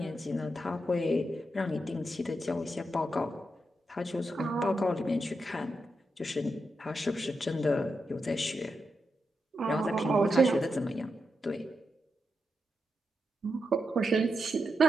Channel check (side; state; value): both; normal; correlation 0.86